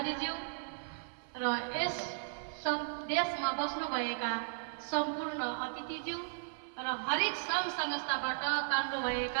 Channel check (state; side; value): silent; left; 54 dB below the other